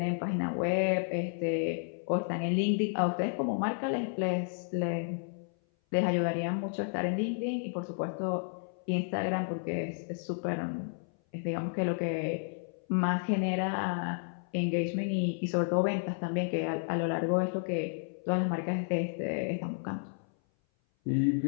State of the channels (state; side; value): silent; right; 57 dB below the other